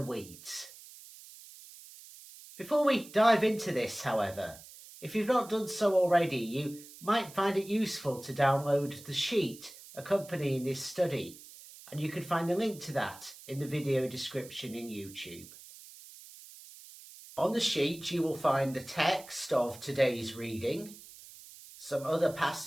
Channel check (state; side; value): noise; right; hiss, 18 dB below the sound